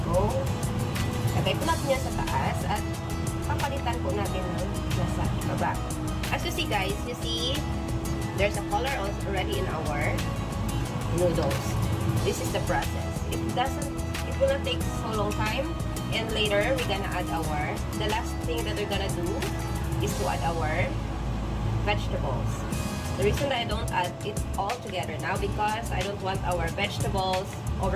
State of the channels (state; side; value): identical; both; correlation 1.00